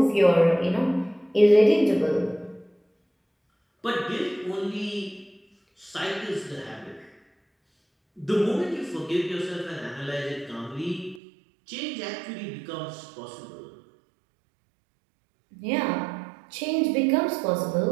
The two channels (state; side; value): drops out; left; at 11.2 s